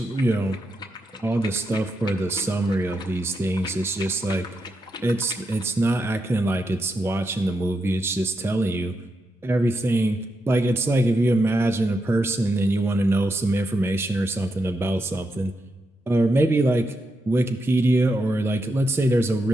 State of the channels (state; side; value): normal; both; correlation 0.84